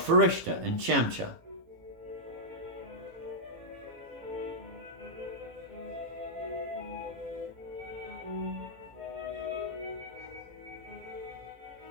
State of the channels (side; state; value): left; late; 18 ms